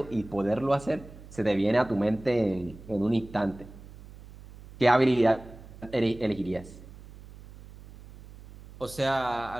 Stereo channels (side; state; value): right; noise; hum, 18 dB below the sound